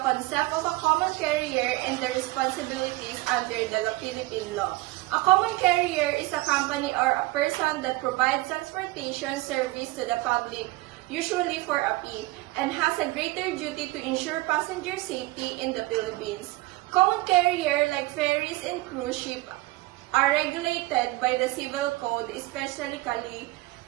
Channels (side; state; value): left; quieter; 20.3 dB